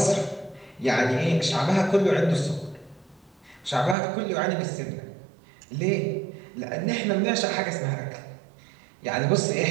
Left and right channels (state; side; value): drops out; left; at 4.0 s